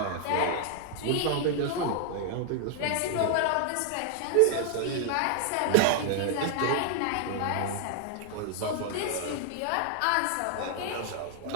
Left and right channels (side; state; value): both; different; correlation 0.00